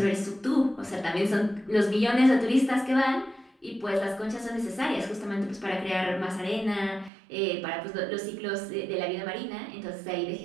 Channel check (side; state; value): left; drops out; at 7.1 s